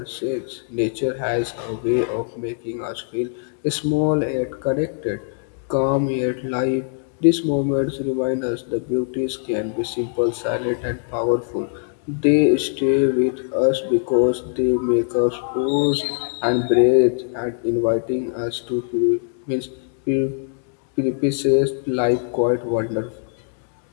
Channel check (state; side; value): silent; right; digital silence